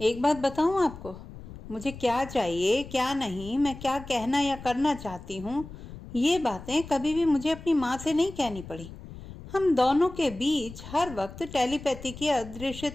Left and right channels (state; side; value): noise; left; rumble, 14 dB below the sound